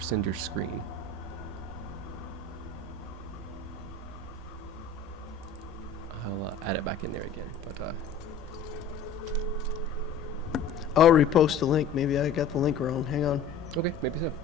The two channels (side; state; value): right; quieter; 5.1 dB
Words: send your screen. I'll add it back in there again, but I'll repost the link. Maybe I got the link wrong. Hang on. okay, maybe so.